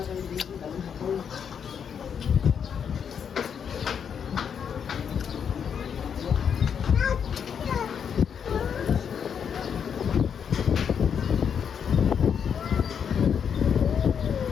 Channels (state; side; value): quieter; right; 7.5 dB